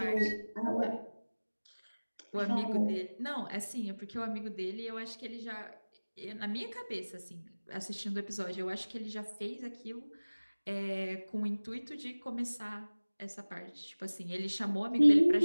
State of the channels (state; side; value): inverted; both; correlation -1.00